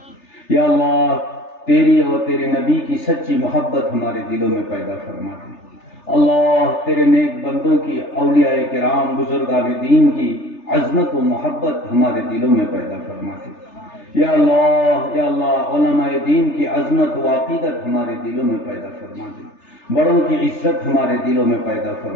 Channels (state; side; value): late; right; 3.3 ms